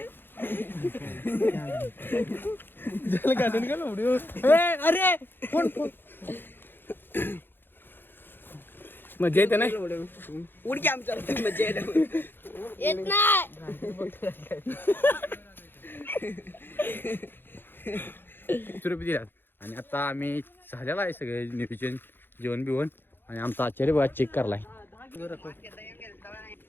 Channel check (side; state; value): right; late; 0.10 ms